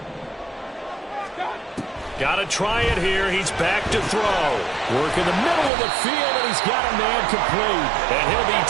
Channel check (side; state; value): left; drops out; at 5.7 s